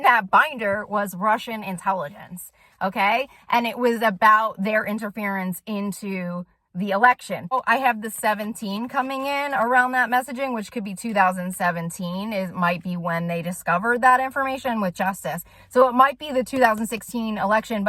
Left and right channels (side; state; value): both; identical; correlation 1.00